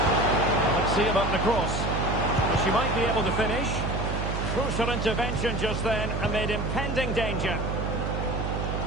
Let's see about the cross. Well, she might be able to finish. Crucial intervention just then amid impending danger.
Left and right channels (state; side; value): noise; right; hum, 2 dB below the sound